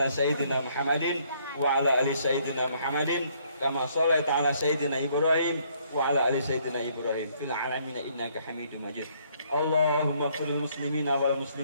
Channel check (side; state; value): both; inverted; correlation -0.67